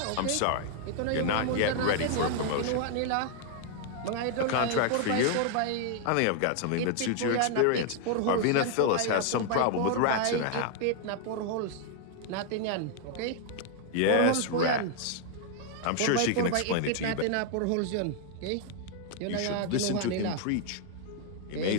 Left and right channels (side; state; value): both; different; correlation 0.00